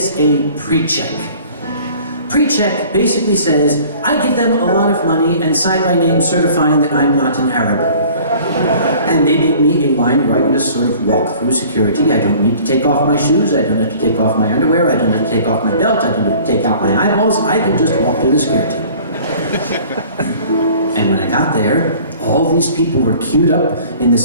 pre-check. Pre-check basically says, I give them a lot of money and sign my name certifying that I'm not an Arab. And they give me a line where I can just sort of walk through security. I don't need to take off my shoes, I don't have to take off my underwear, I don't have to take off my belt, I don't have to take out my eyeballs, I can just walk through the security. And when I got there, all these people were queued up in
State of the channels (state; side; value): inverted; both; correlation -0.49